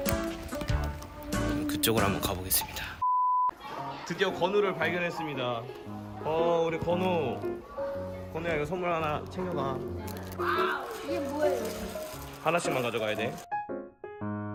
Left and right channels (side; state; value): both; identical; correlation 1.00